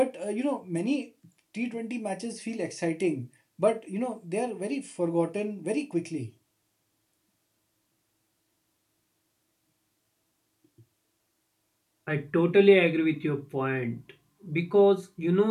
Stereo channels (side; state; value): both; identical; correlation 1.00